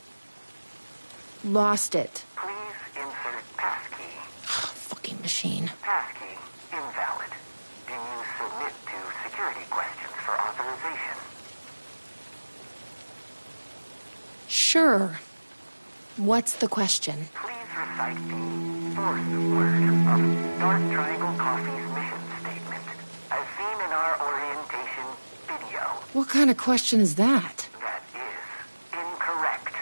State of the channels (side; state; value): both; inverted; correlation -1.00